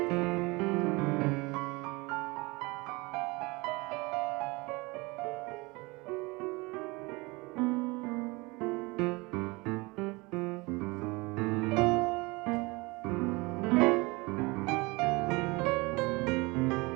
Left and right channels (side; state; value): left; quieter; 24.7 dB